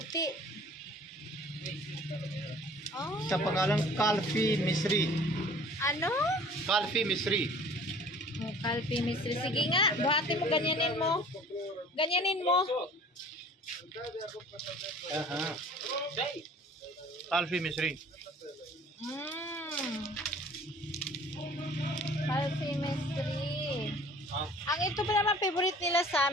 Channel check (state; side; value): normal; both; correlation 0.49